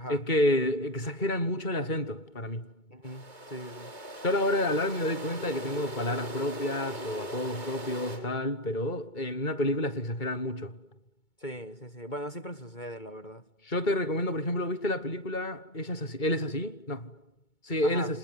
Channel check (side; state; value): right; late; 2.2 ms